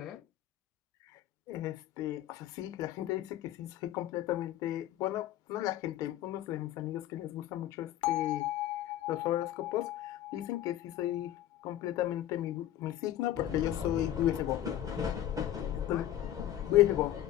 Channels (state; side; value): quieter; right; 12.6 dB